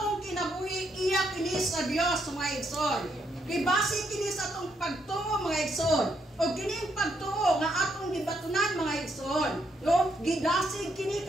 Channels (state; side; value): normal; both; correlation 0.76